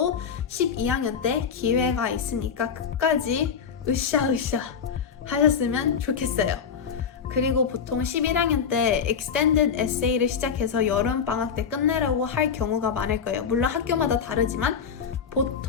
12학년 때 기회가 있으니까 끝까지 으쌰으쌰 하셨으면 좋겠어요. 그리고 보통 11학년 때 extended essay를 시작해서 여름방학 때 끝내려고 할 경우가 많을 거예요. 물론 학교마다 다르지만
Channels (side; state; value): right; quieter; 6.8 dB